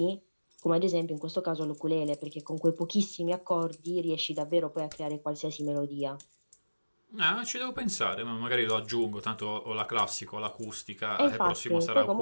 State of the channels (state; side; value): inverted; both; correlation -1.00